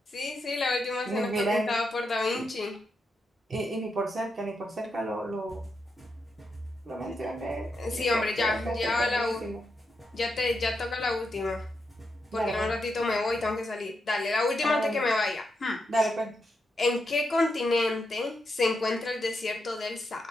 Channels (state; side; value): normal; both; correlation 0.84